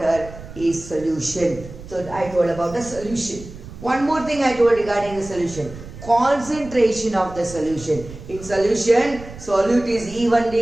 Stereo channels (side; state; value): right; noise; rumble, 15 dB below the sound